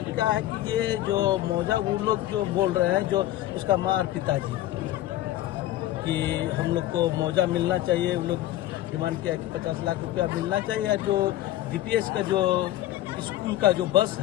क्या है कि ये जो मौजा वो लोग जो बोल रहे हैं, जो उसका माँ और पिताजी, कि हम लोग को मौजा मिलना चाहिए। वो लोग डिमांड किया है कि 50 लाख रुपया मिलना चाहिए। या जो डीपीएस का जो स्कूल का जो बस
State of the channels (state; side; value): quieter; right; 14.5 dB